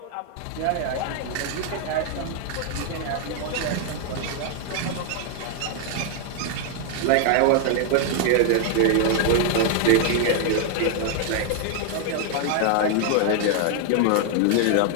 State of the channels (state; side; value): different; both; correlation 0.00